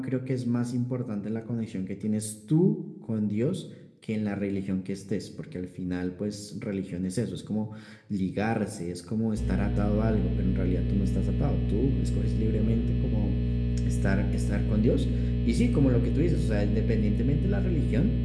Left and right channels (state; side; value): identical; both; correlation 1.00